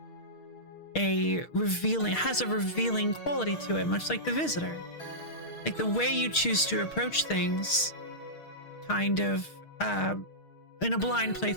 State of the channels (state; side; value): late; right; 6.4 ms